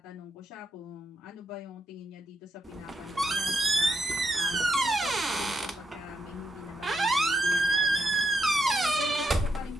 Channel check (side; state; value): both; normal; correlation 0.82